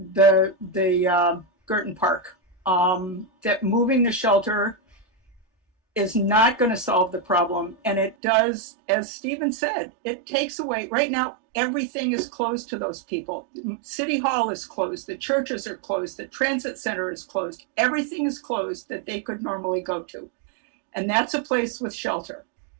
Girton Park. that moving the shelter is not going to solve the problem. And it does, as Stephen said, it takes away, right now, everything is closed to those people. City Hall is closed, the churches are closed, the transit center is closed, everything is closed that they could normally go to. And that's a place with shelter.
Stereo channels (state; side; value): drops out; left; at 8.2 s